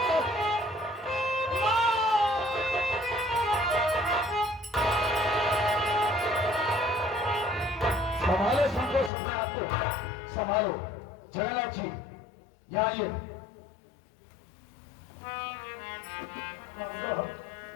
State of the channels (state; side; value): drops out; right; at 9.1 s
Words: संभालो संतोष, अपने आप को संभालो। जगन्नाथ जी यहाँ आइए।